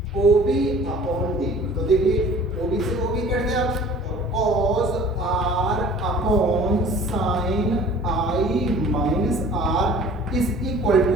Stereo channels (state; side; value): normal; both; correlation 0.48